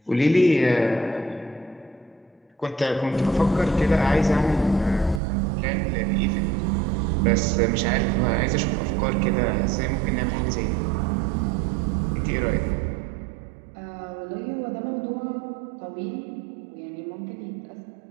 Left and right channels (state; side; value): drops out; left; at 5.2 s